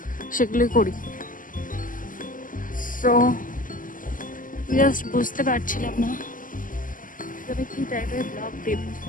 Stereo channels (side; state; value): right; late; 0.39 ms